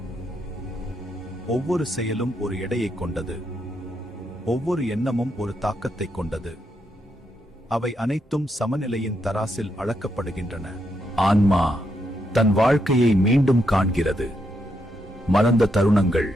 ஒவ்வொரு செயலும் ஒரு எடையை கொண்டது, ஒவ்வொரு எண்ணமும் ஒரு தாக்கத்தை கொண்டது. அவை அனைத்தும் சமநிலையின் தராசில் அளக்கப்படுகின்றன. ஆன்மா தன் வாழ்க்கையை மீண்டும் காண்கிறது. மறந்த தருணங்கள்,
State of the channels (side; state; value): both; normal; correlation 0.80